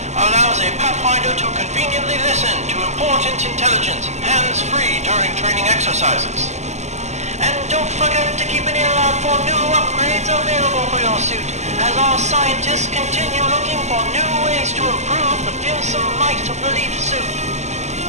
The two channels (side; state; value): left; late; 0.33 ms